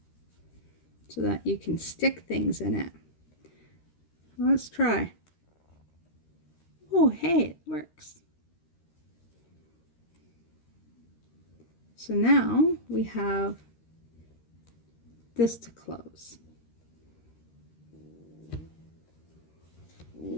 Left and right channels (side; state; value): right; late; 13 ms